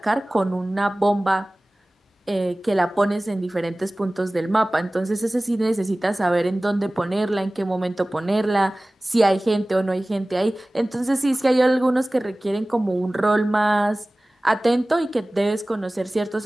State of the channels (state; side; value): normal; both; correlation 0.98